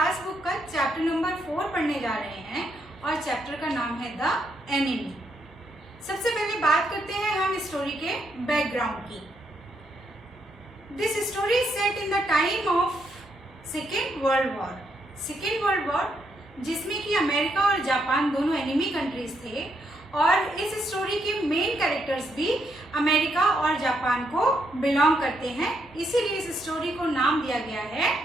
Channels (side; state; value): both; normal; correlation 0.77